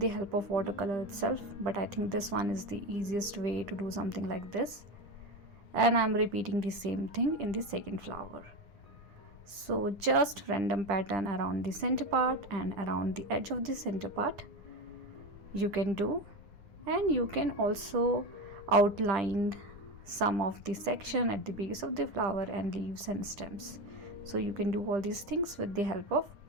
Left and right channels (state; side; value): late; left; 10 ms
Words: help of watercolor itself, but I think this one is the easiest way to do something like this. And I'm repeating the same thing in the second flower. So just random pattern around the center part and around the edge of the center part you can do. And you can also outline some of the section at the base of the flower and leaves and stems. So you can do all these things with the help of